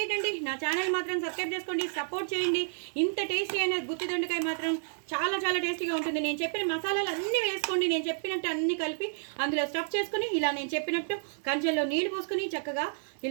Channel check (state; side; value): silent; left; digital silence